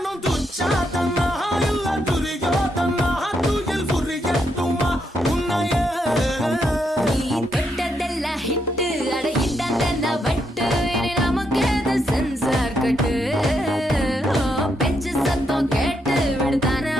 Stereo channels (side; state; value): both; normal; correlation 0.79